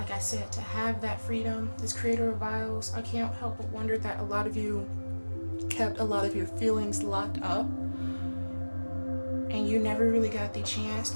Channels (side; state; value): both; inverted; correlation -1.00